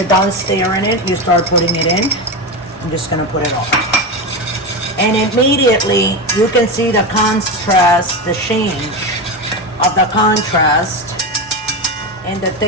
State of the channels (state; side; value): normal; both; correlation 0.17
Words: done stirring it, you start putting it in. I'm just gonna put it all, and immediately you can see the contrast, the change of the contrast and the